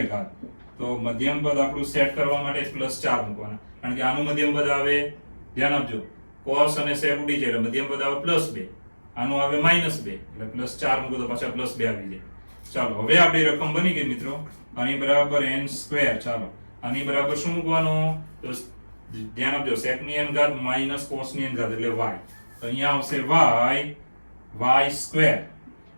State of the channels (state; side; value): inverted; both; correlation -1.00